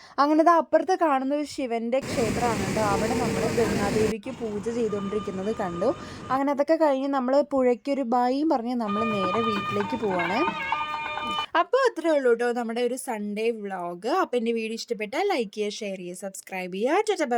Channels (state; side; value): identical; both; correlation 1.00